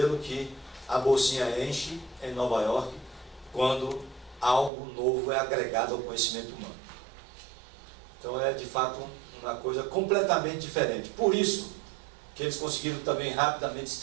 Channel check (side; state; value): left; drops out; at 4.7 s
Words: que a bolsinha enche em Nova York quando algo novo é agregado ao conhecimento humano. Então é de fato uma coisa completamente diferente. Por isso que eles conseguiram também rapidamente se